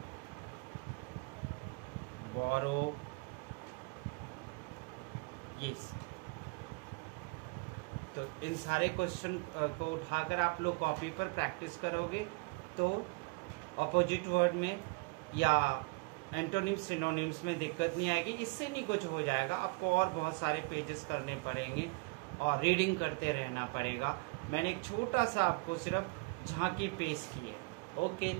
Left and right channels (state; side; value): quieter; left; 29.0 dB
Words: बोरो, यस। तो इन सारे क्वेश्चन को उठाकर आप लोग कॉपी पर प्रैक्टिस करोगे तो अपोजिट वर्ड में या एंटोनिम्स सिनोनिम्स में दिक्कत नहीं आएगी। इससे नहीं कुछ हो जाएगा, आपको और बहुत सारे पेजेस करने पड़ेंगे और रीडिंग करते रहना पड़ेगा। मैंने एक छोटा सा आपको सिर्फ झांकी पेश की है। Okay,